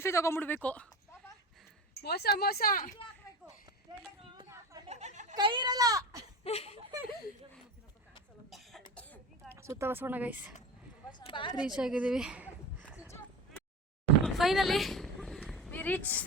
ತೊಗೊಂಡ್ಬಿಡ್ಬೇಕು. ಮೋಸ ಕೈ ಇರಲ್ಲ. ಸುತ್ತ ಬಸವಣ್ಣ ಗೈಸ್ ರೀಚ್ ಆಗಿದ್ದೀವಿ. Finally we reach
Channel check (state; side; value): normal; both; correlation 0.29